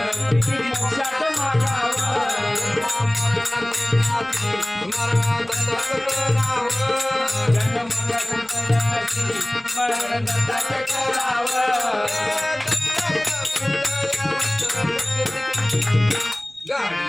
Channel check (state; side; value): noise; right; rumble, 28 dB below the sound